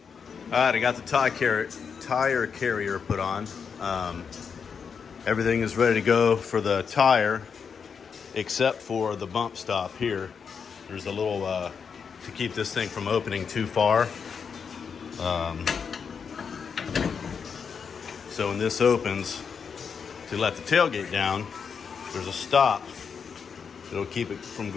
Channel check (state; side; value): quieter; right; 6.3 dB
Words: All right, I got the tire carrier put on. Everything is ready to go for the tire, except for the bump stop here. There's a little, to keep this thing from opening too far. So when this opens, to let the tailgate down, there's a stop. It'll keep it from